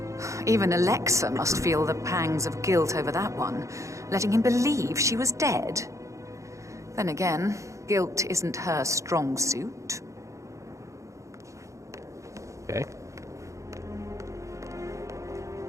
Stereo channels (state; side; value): late; left; 0.15 ms